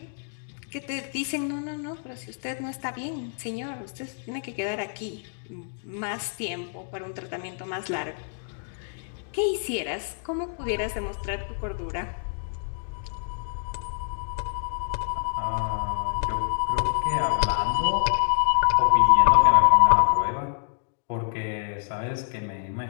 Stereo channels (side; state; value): right; silent; digital silence